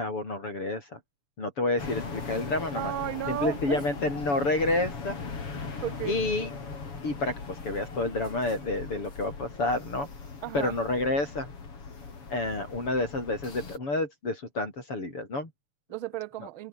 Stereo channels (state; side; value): late; right; 7.2 ms